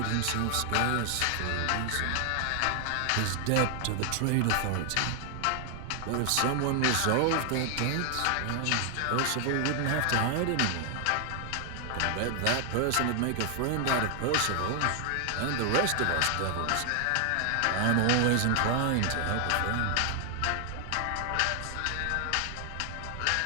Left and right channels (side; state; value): both; different; correlation 0.00